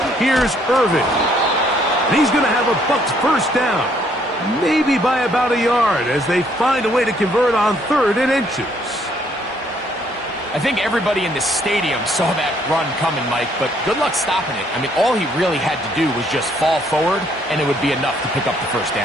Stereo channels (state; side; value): normal; both; correlation 0.67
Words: Here's Irvin. And he's going to have a Bucs first down. Maybe by about a yard as they find a way to convert on 3rd and inches. I think everybody in the stadium saw that run coming, Mike, but good luck stopping it. I mean, all he really had to do was just fall forward, and it would be enough to pick up the first